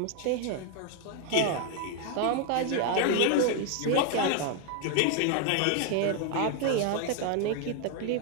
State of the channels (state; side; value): different; both; correlation 0.00